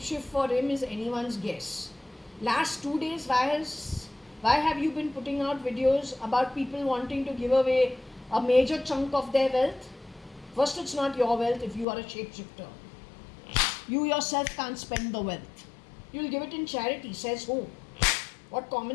for him is anyone's guess. Last 2 days, why have you been putting out videos about people wanting to give away a major chunk of their wealth? First, it's not your wealth if you are a shapeshifter. You yourself can't spend the wealth. You'll give it in charity, says who? What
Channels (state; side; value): drops out; right; at 11.9 s